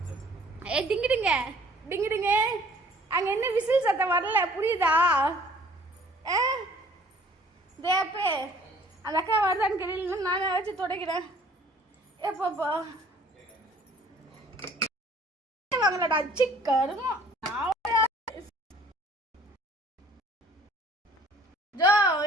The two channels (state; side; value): normal; both; correlation 0.55